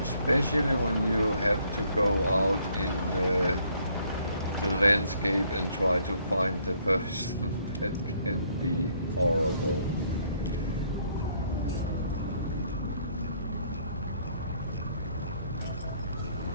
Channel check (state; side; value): inverted; both; correlation -0.66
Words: Especially when you have to go out in the landscape and try to find the person, that can be horrible.